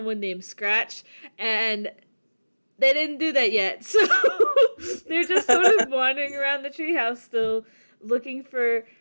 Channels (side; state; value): both; inverted; correlation -1.00